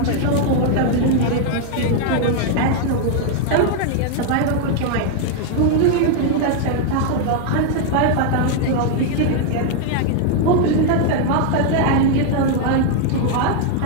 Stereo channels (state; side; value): different; both; correlation 0.00